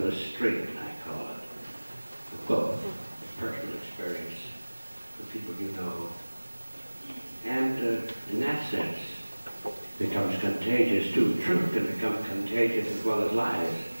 the street, I call it. The book, personal experience, the people you know. And in that sense, becomes contagious too. Truth can become contagious as well as lies.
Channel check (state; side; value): inverted; both; correlation -1.00